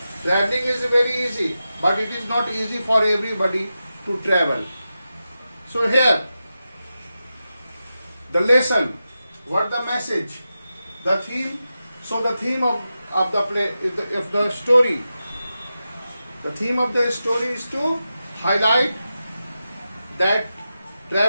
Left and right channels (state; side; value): inverted; both; correlation -0.91